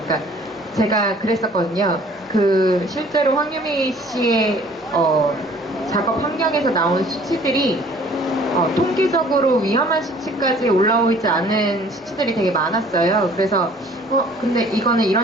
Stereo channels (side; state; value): both; normal; correlation 0.54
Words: 그러니까 제가 그랬었거든요. 그 실제로 황유미 씨의 작업 환경에서 나온 수치들이 통계적으로 위험한 수치까지 올라오지 않은 수치들이 되게 많았어요. 그래서 근데 이거는